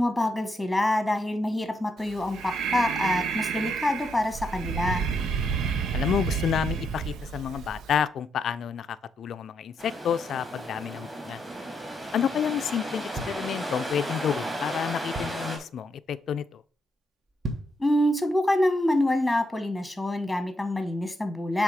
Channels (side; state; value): both; normal; correlation 0.79